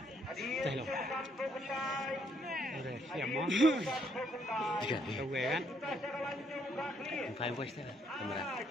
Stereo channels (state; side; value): normal; both; correlation 0.71